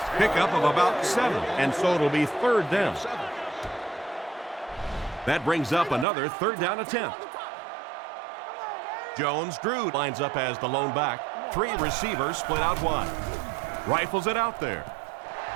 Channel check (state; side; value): drops out; left; at 6.1 s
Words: Pickup of about 7, and so it'll be third down. That brings up another third down attempt. Jones-Drew lines up as the lone back. 3 receivers split out wide. Rifles it out there.